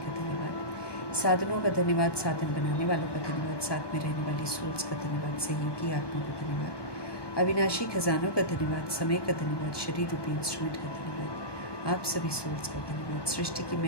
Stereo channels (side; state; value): right; late; 1.2 ms